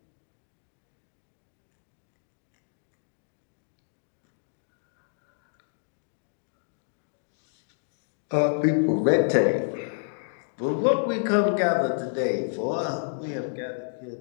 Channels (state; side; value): silent; right; 58 dB below the other